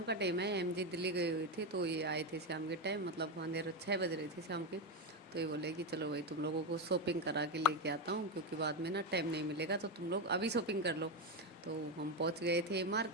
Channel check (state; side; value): normal; both; correlation 0.10